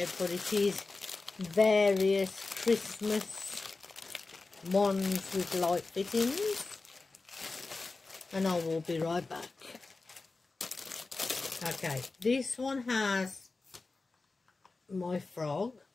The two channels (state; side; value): quieter; right; 3.7 dB